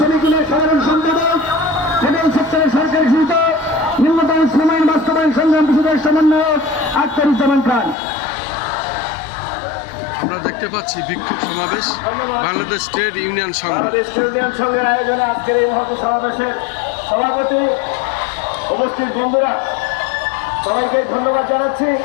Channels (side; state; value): right; drops out; at 8.0 s